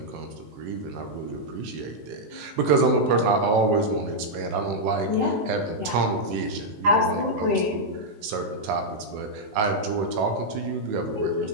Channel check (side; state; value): left; late; 19 ms